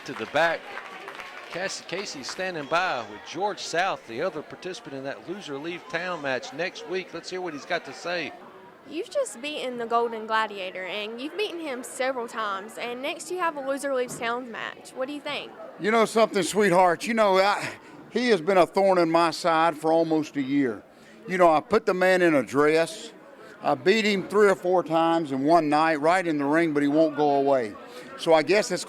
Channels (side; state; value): both; identical; correlation 1.00